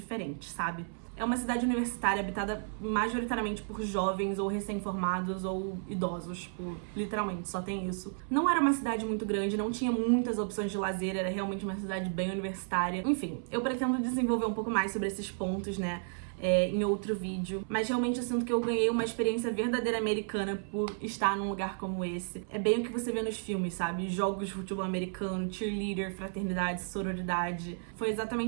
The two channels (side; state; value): left; silent; 56 dB below the other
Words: sabe? É uma cidade universitária habitada majoritariamente por jovens ou recém-formados ou idosos, tipo, literalmente, só tem isso. Não era uma cidade muito grande, não tinha muitas opções de lazer, era realmente uma cidade bem universitária. Enfim, eu pretendo desenvolver um pouco mais sobre esses pontos, né, em outro vídeo, mas realmente eu sinto que eu ganhei uma experiência verdadeira americana por estar num lugar como esse. É bem o que você vê nos filmes, sabe? Jogos de futebol americano, cheerleader, fraternidade, sororidade. Foi